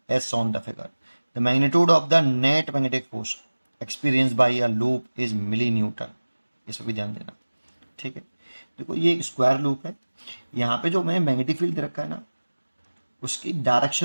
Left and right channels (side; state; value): both; inverted; correlation -1.00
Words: as shown in the figure. The magnitude of the net magnetic force experienced by a loop is millinewton. इस पर भी ध्यान देना। ठीक है, देखो ये एक स्क्वायर लूप है। यहाँ पे जो मैं मैग्नेटिक फील्ड दे रखा है ना, उसकी